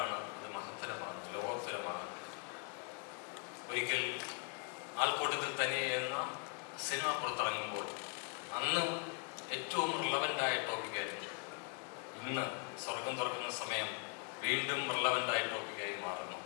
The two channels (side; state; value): right; quieter; 37.4 dB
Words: അത് മഹത്തരമാണ്, ലോകോത്തരമാണ്. ഒരിക്കൽ ആൾക്കൂട്ടത്തിൽ തന്നെ എന്ന സിനിമ പുറത്തിറങ്ങുമ്പോൾ അന്ന് ഏറ്റവും റിലവൻ്റായ ടോപ്പിക്കായിരുന്നു. ഇന്ന് സ്വർഗം തുറക്കുന്ന സമയം വീണ്ടും റിലവൻ്റായ ടോപ്പിക്കായി മാറുന്നു.